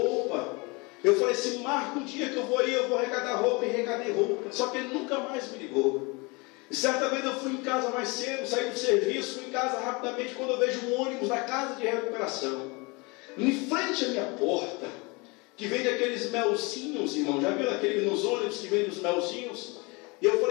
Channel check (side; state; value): right; quieter; 27.4 dB